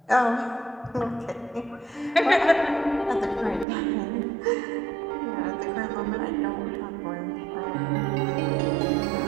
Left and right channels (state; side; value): drops out; left; at 3.7 s